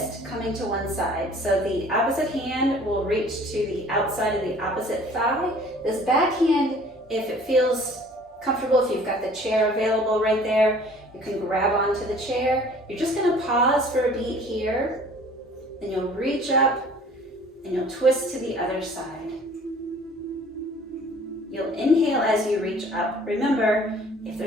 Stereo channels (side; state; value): both; normal; correlation 0.51